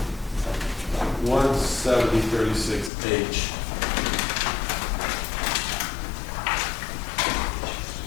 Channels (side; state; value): right; drops out; at 2.9 s